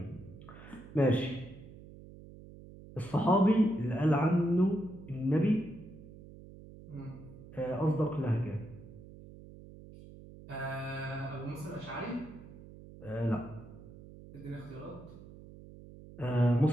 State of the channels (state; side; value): noise; right; hum, 17 dB below the sound